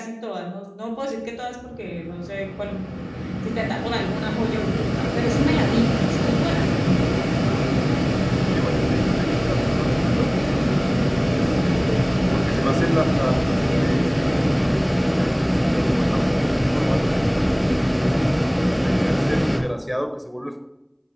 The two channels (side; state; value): both; identical; correlation 1.00